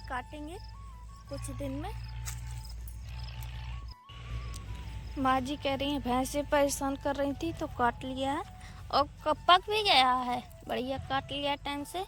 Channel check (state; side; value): identical; both; correlation 1.00